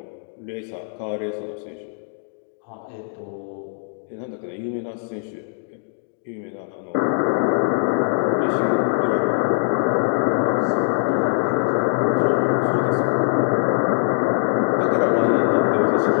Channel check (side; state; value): right; silent; digital silence